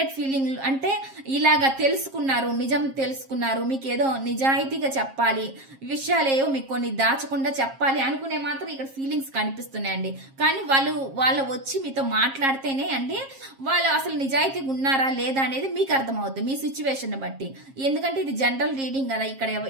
ఫీలింగ్ అంటే ఇలాగా తెలుసుకున్నారు, నిజం తెలుసుకున్నారు, మీకు ఏదో నిజాయితీగా చెప్పాలి, విషయాలేవో మీకు కొన్ని దాచకుండా చెప్పాలి అనుకునే మాత్రం ఇక్కడ ఫీలింగ్స్ కనిపిస్తున్నాయండి. కానీ వాళ్ళు వచ్చి మీతో మాట్లాడితేనే అండి వాళ్ళు అసలు నిజాయితీగా ఉన్నారా లేదా అనేది మీకు అర్థమవుతుంది మీ సిచ్యువేషన్ బట్టి. ఎందుకంటే ఇది జనరల్ రీడింగ్ కదా, ఇక్కడ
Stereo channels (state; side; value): late; left; 7.4 ms